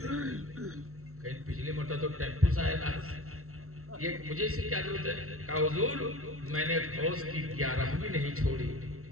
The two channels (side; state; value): left; late; 0.63 ms